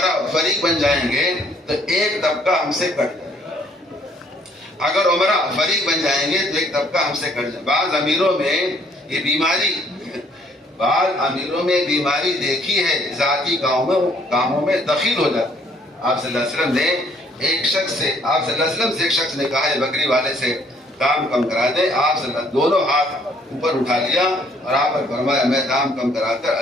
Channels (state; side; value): normal; both; correlation 0.63